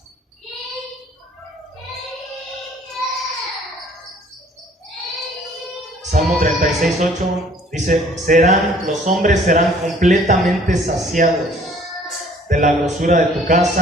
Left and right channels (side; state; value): both; normal; correlation 0.56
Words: Salmo 36:8 dice: los hombres serán completamente saciados de la grosura de tu